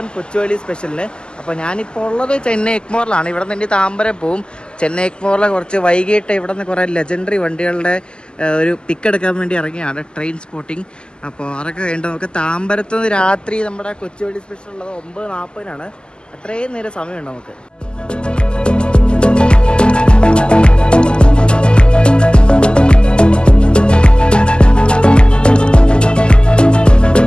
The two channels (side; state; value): right; late; 0.048 ms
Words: കൊച്ചുവേളി സ്പെഷ്യലിന്. അപ്പോൾ ഞാനിപ്പോൾ ഉള്ളത് ചെന്നൈ എഗ്മോറിലാണ്. ഇവിടെ നിന്ന് താമ്പരം പോവും. ചെന്നൈ എഗ്മോറിലെ കുറച്ച് വൈകിട്ട് ഇവിടെ നിന്ന് കുറേ ലെജൻഡറി വണ്ടികളുടെ ഒരു പിക്ക് എടുക്കാൻ വേണ്ടി ഇറങ്ങിയാണ് ട്രെയിൻ സ്പോട്ടിങ്. അപ്പോൾ അതൊക്കെ കഴിഞ്ഞിട്ട് നമുക്ക് താമ്പരത്ത് നിന്ന് രാത്രി നമ്മുടെ കൊച്ചുവേളി സ്പെഷ്യൽ ഉള്ളത് 9:40 അത്രയും നേരം സമയമുണ്ട് നമുക്ക്.